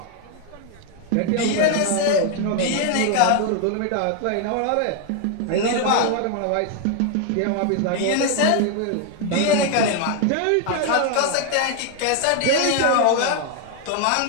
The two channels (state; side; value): different; both; correlation 0.00